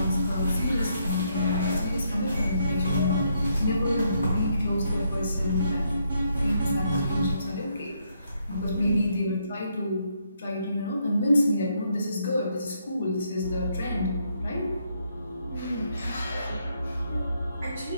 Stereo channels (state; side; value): inverted; both; correlation -0.76